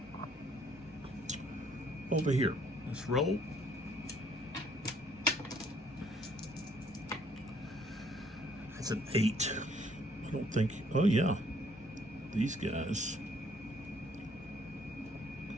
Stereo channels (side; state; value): both; normal; correlation 0.64